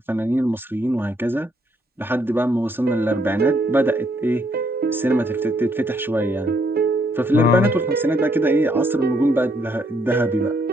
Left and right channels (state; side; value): normal; both; correlation 0.72